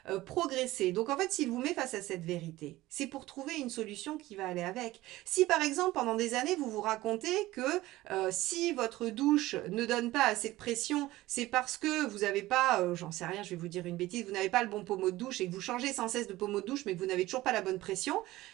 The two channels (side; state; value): left; quieter; 17.4 dB